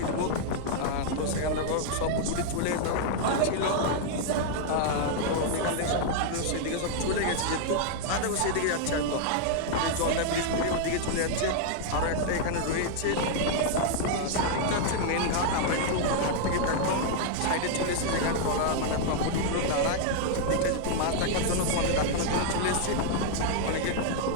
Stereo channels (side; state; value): both; different; correlation 0.00